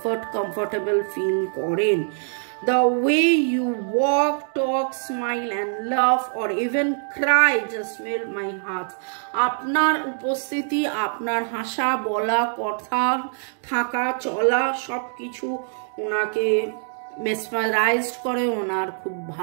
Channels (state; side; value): silent; left; digital silence